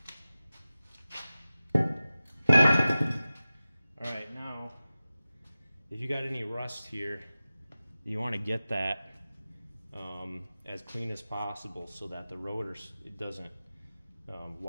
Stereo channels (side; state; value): both; inverted; correlation -0.96